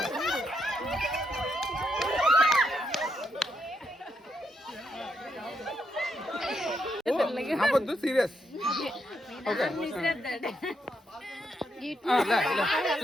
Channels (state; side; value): normal; both; correlation 0.79